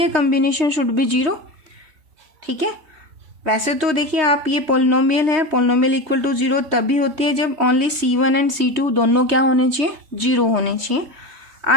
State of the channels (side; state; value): left; late; 3.2 ms